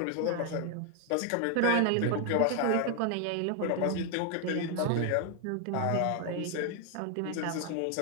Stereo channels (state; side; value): different; both; correlation 0.00